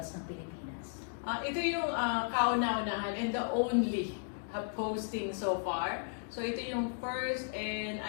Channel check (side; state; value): right; silent; digital silence